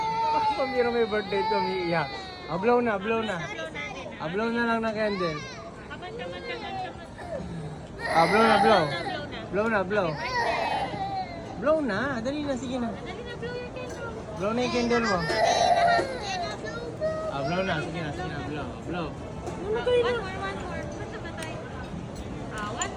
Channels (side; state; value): both; identical; correlation 1.00